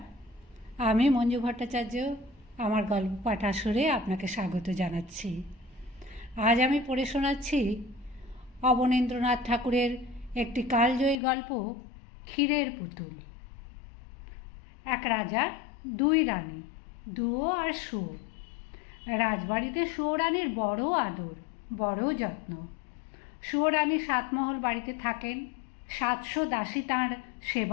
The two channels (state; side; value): drops out; right; at 11.2 s